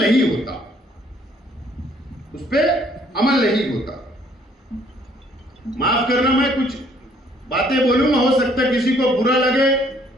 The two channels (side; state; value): both; normal; correlation 0.63